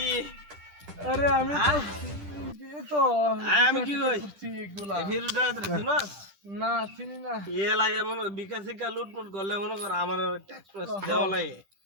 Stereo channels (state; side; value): late; left; 10 ms